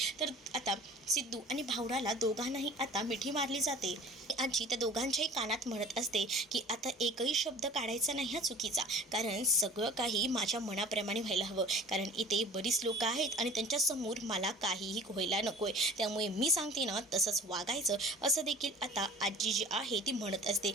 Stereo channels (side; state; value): both; normal; correlation 0.44